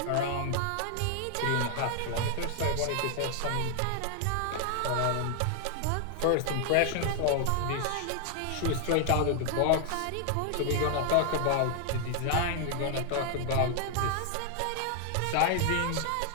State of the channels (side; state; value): both; different; correlation 0.00